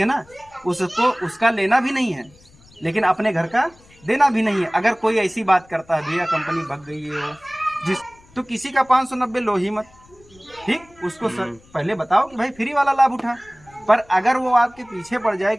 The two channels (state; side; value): noise; left; rumble, 28 dB below the sound